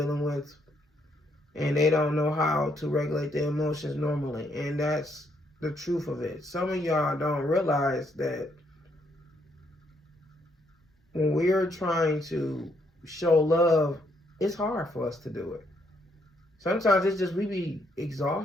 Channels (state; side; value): normal; both; correlation 0.73